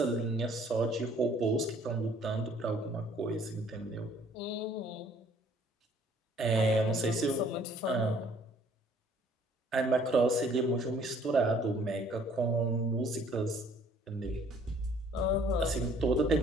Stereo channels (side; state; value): both; normal; correlation 0.59